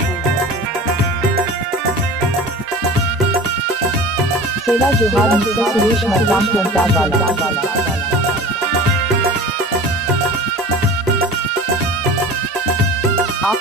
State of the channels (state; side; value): normal; both; correlation 0.37